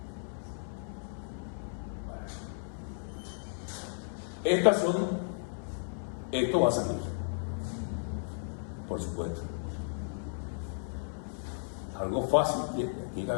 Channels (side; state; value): right; silent; 55 dB below the other